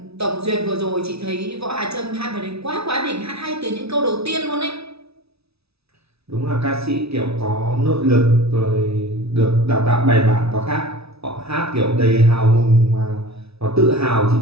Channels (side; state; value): left; late; 0.78 ms